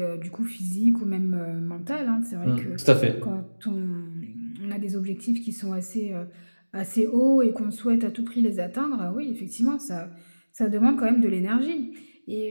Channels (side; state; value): both; inverted; correlation -1.00